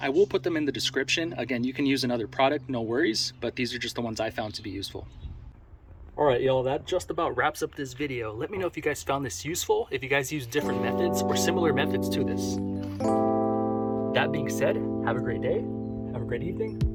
I will put them in the description. Again, you can use another product, no worries, but these are just the ones I found to be useful. All right, y'all, that just about wraps up this video. Let me know if you guys found this useful, if you guys use different methods or similar methods to this. That being said, have a great day, have a great evening.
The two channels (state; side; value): identical; both; correlation 1.00